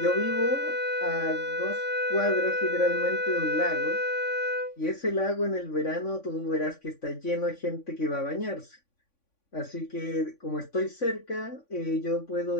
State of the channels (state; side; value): late; right; 3.5 ms